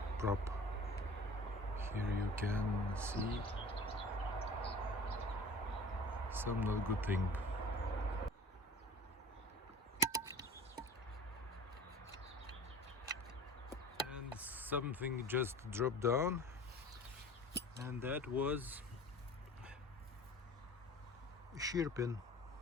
prop. Here you can see some not good thing. And something just dropped down, and that was a shear pin.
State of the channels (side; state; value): both; normal; correlation 0.41